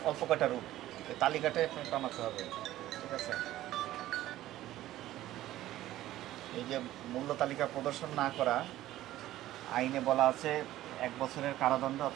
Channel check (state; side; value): quieter; left; 14.6 dB